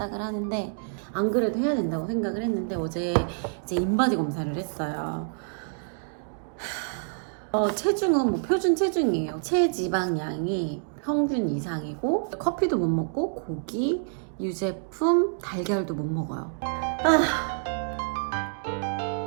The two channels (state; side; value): silent; left; digital silence